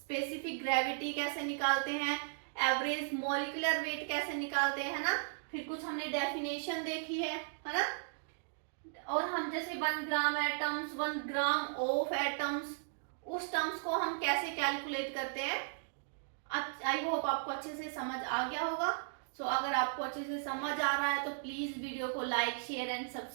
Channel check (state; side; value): silent; left; digital silence